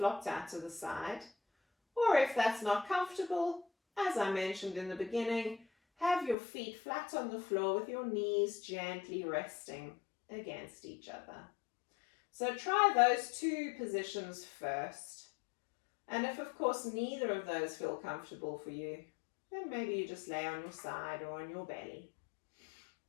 out to the side, or if that's not comfortable, as I mentioned in the beginning, have your feet flat on the floor with your knees gently resting against each other. So try those 2 positions first. And if, of course, neither of those feel comfortable for you, then maybe you just lay on your side or on your belly.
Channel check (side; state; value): right; drops out; at 6.4 s